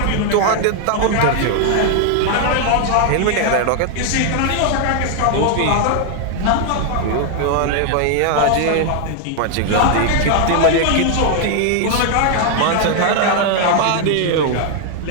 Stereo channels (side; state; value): both; different; correlation 0.00